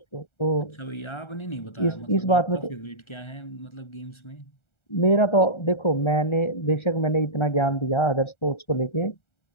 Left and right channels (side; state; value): right; late; 1.3 ms